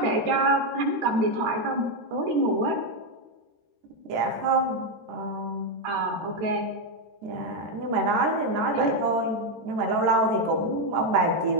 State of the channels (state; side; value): late; left; 13 ms